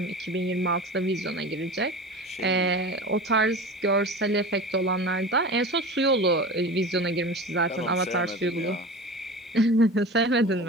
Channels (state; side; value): normal; both; correlation 0.33